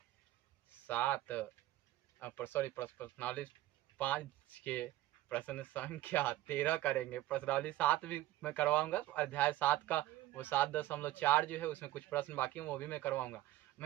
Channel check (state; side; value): quieter; left; 15.7 dB